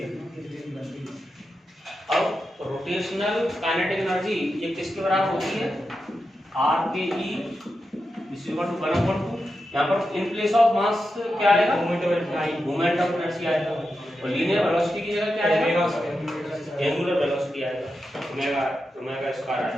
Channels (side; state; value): both; normal; correlation 0.89